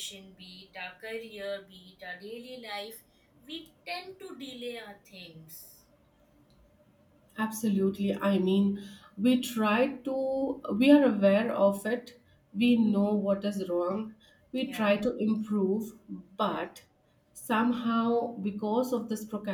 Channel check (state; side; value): identical; both; correlation 1.00